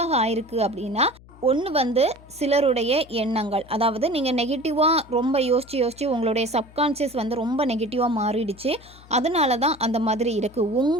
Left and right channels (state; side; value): noise; left; hum, 23 dB below the sound